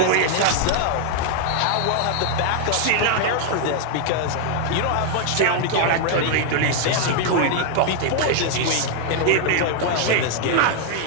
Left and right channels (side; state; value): both; different; correlation 0.00